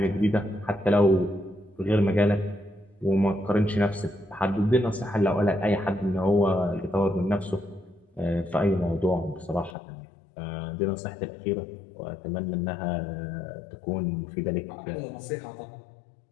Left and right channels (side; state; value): right; drops out; at 9.8 s